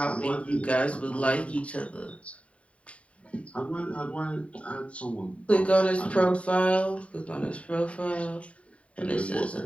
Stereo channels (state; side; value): late; right; 0.064 ms